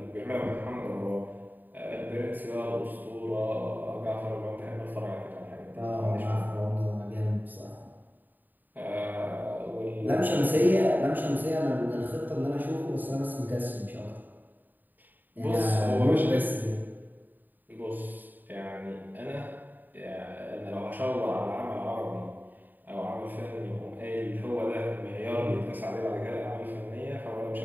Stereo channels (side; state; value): left; late; 0.088 ms